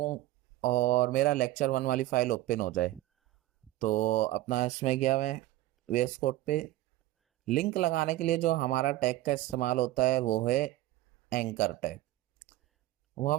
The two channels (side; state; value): left; quieter; 16.0 dB